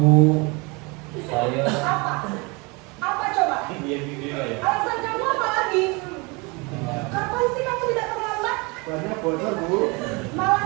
saya Apa? Apa coba? Dia video ya. Alasan kamu apa lagi? Kapan sih kamu tidak terlambat? Banyak bocor, Bu.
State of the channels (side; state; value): left; quieter; 28.1 dB